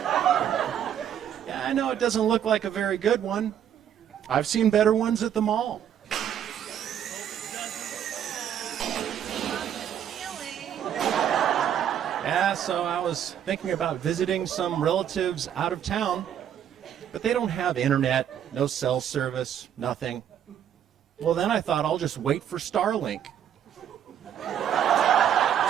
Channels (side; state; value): left; quieter; 9.6 dB